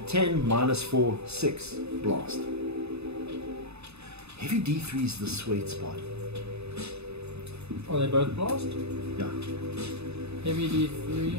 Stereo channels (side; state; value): left; late; 0.80 ms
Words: 10, -4, 6 blast. Heavy d3 is the sweet spot. Are they both blast? Yeah. Heavy D3.